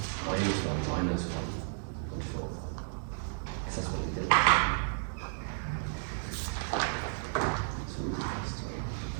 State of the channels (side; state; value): left; silent; digital silence